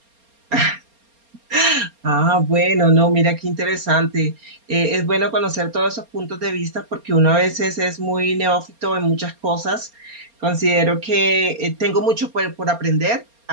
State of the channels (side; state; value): left; late; 4.3 ms